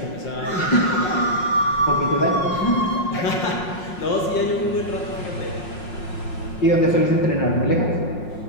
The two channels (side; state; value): right; late; 5.6 ms